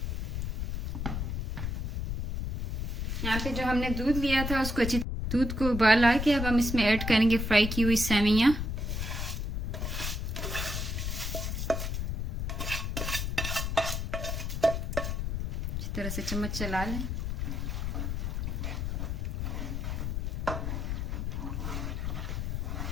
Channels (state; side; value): noise; left; rumble, 2 dB below the sound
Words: यहाँ पे जो हमने दूध लिया था उसको अच्छी दूध को उबाल आ के अब हम इसमें ऐड करेंगे फ्राई की हुई सेवइयाँ। इस तरह से चम्मच चला लें।